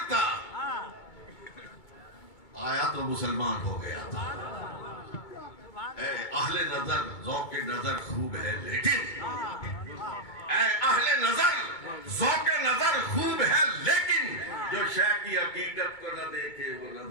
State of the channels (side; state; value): right; late; 2.2 ms